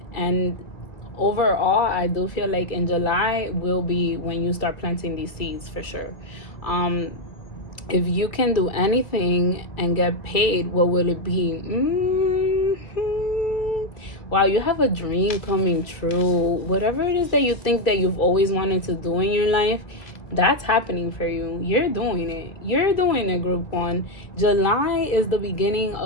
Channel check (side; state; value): right; late; 2.4 ms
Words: And overall, I do feel like in July will be when you start planting these seeds, for sure. If you can do anything and get paid, what will it be? Wow, you have a dream coming true. Whatever it is that you think that you've always wanted to do in your life, that's happening for you. You're doing it. You're doing it, group one. July is the beginning